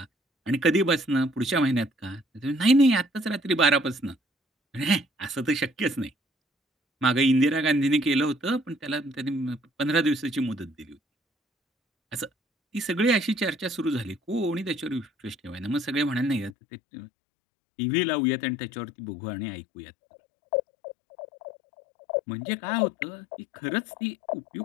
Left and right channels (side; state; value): right; drops out; at 16.5 s